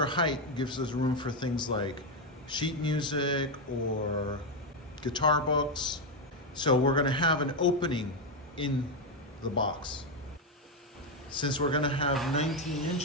height gives us room for things like sheet music or guitar books. So we're gonna have an opening in the box. Since we're gonna have 19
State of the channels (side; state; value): both; normal; correlation 0.06